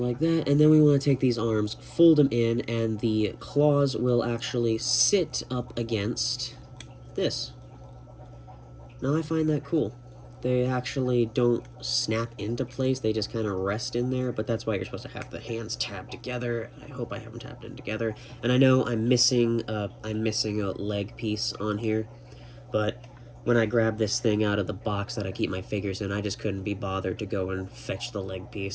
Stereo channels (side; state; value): both; identical; correlation 1.00